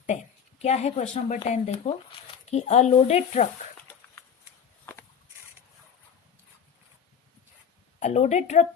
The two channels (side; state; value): right; quieter; 7.5 dB